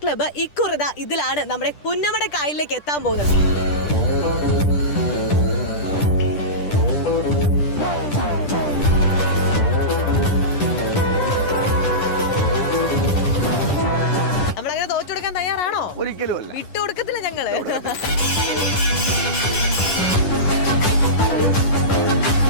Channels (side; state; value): right; late; 10 ms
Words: club ഇക്കുറിത ഇതിലാണ് നമ്മുടെ പുന്നമട കായലിലേക്ക് എത്താൻ പോകുന്നത്. നമ്മളങ്ങനെ തോറ്റുകൊടുക്കാൻ തയ്യാറാണോ? ഒരിക്കലും അല്ല, വിട്ടുകൊടുക്കത്തില്ല ഞങ്ങള്.